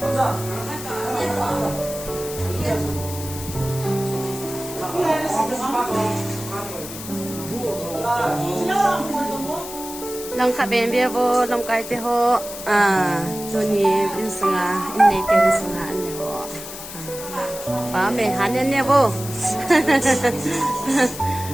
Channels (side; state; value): left; noise; hiss, 11 dB below the sound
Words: Lang kha ben bia bo lam kai te ho tu ni in sanga in nei te sanga an ne ho pa me han ne bo